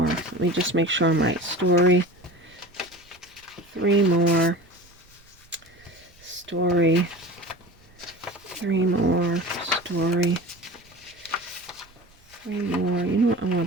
Let me just make sure I'm right. Story. 3 more. Story. 3 more. Story. 3 more. You know what? I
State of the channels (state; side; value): noise; right; rumble, 29 dB below the sound